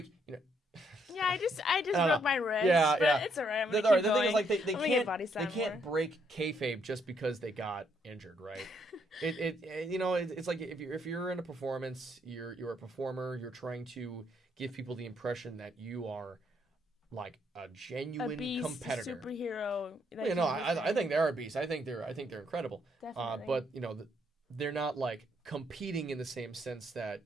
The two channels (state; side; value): normal; both; correlation 0.72